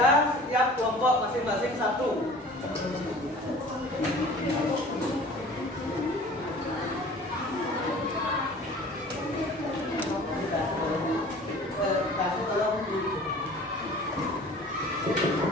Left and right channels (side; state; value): both; normal; correlation 0.45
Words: setiap kelompok masing-masing satu.